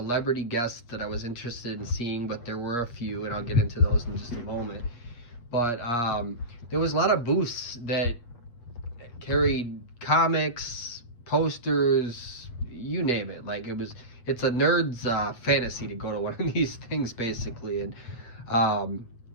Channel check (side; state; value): right; late; 8.5 ms